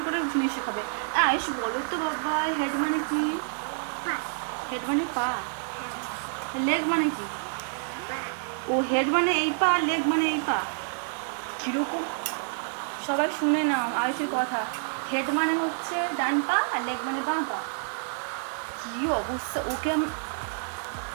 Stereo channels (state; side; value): silent; left; digital silence